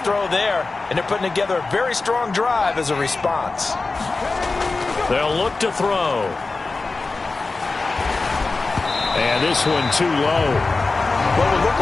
there, and they're putting together a very strong drive as a response. They'll look to throw. And this one too low. What would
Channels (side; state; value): right; quieter; 3.7 dB